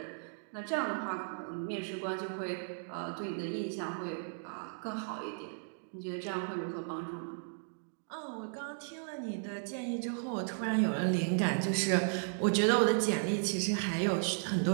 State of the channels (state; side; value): silent; left; digital silence